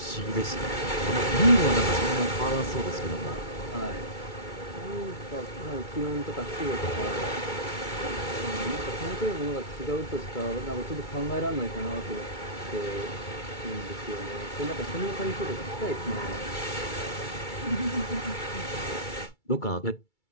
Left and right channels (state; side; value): late; right; 2.3 ms